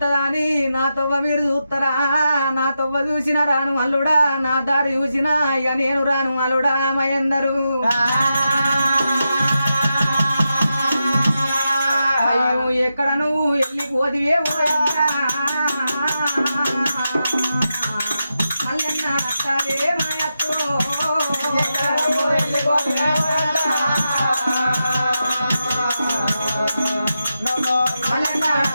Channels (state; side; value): inverted; both; correlation -0.88